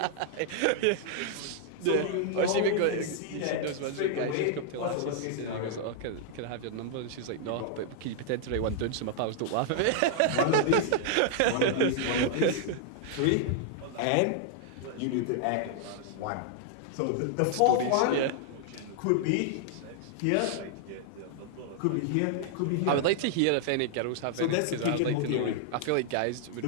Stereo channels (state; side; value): different; both; correlation 0.00